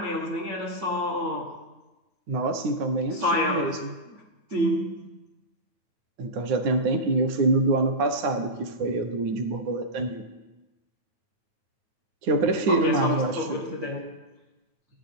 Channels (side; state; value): left; late; 9.7 ms